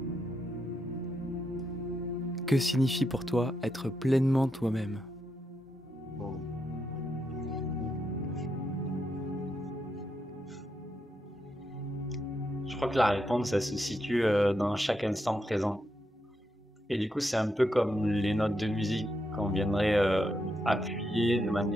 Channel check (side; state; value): both; normal; correlation 0.82